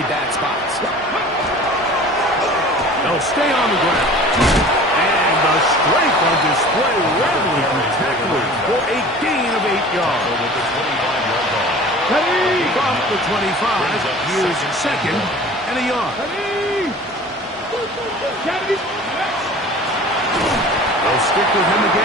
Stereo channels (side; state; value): both; normal; correlation 0.43